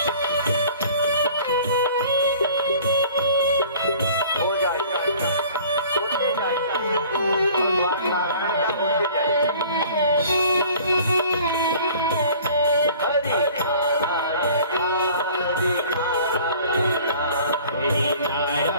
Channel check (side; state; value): both; inverted; correlation -0.49